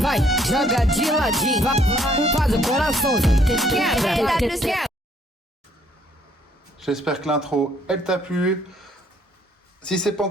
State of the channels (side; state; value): both; normal; correlation 0.65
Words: vai, joga de ladinho, vai, faz o coraçãozinho, quebra. J'espère que l'intro, elle t'a plu. Si c'est pas